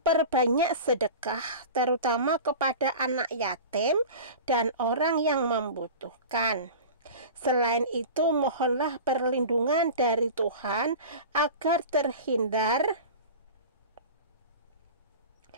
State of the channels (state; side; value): inverted; both; correlation -0.34